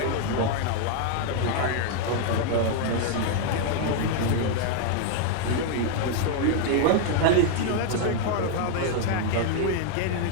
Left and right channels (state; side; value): different; both; correlation 0.00